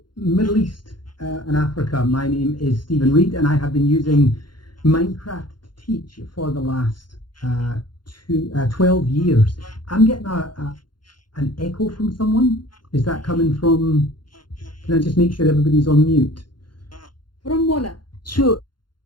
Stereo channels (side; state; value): right; late; 0.71 ms